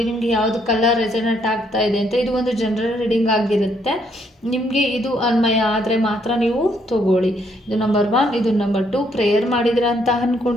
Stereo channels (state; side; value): normal; both; correlation 0.71